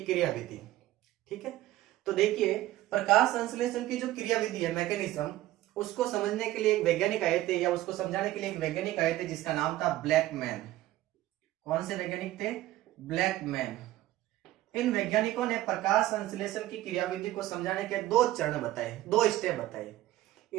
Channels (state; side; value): quieter; left; 15.4 dB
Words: विधि। ठीक है, तो देखिए प्रकाश संश्लेषण की जो क्रिया विधि है, मैकेनिज्म, उसको समझने के लिए एक वैज्ञानिक आए थे, या उसको समझाने के लिए एक वैज्ञानिक आए थे जिसका नाम था ब्लैकमैन। कौन से वैज्ञानिक थे? ब्लैकमैन। इन वैज्ञानिकों ने प्रकाश संश्लेषण की क्रियाविधि को समझाने के दो चरण बताए, दो स्टेप बताए।